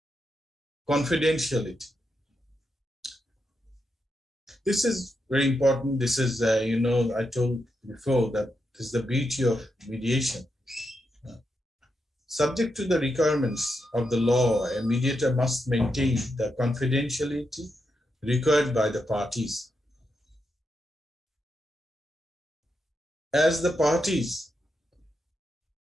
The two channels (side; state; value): both; normal; correlation 0.84